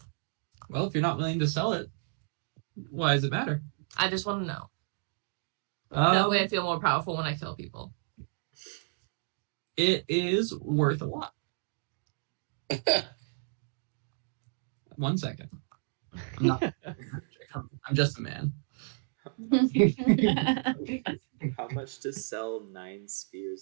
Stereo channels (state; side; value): silent; left; digital silence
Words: Well, if you're not willing to sell it, why does it matter? I just want to know. That way I Um, feel more powerful when I kill people. it is worth a lot. 1 second. I'm not. I'm just a man. How much to sell 9